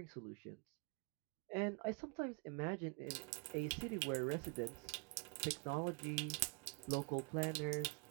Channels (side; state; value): left; quieter; 31.7 dB